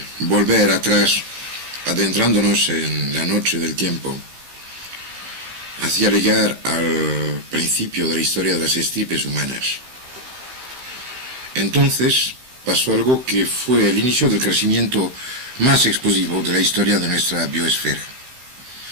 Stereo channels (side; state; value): left; late; 15 ms